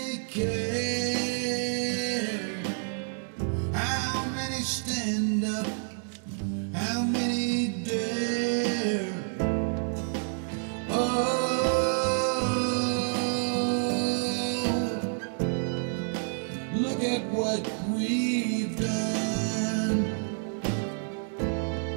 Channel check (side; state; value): left; silent; 59 dB below the other